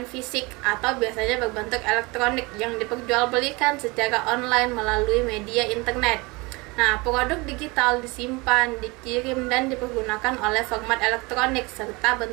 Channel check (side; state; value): left; quieter; 25.2 dB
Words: fisik atau biasanya berbentuk elektronik yang diperjualbelikan secara online melalui media internet. Nah, produk digital disimpan, dikirim, dan dipergunakan oleh format elektronik serta